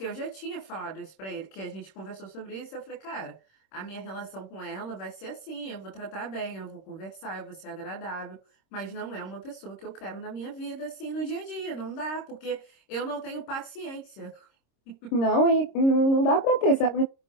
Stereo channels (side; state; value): right; late; 26 ms